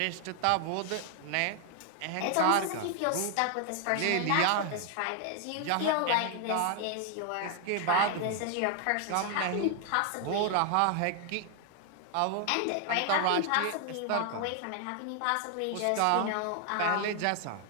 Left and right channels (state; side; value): different; both; correlation 0.00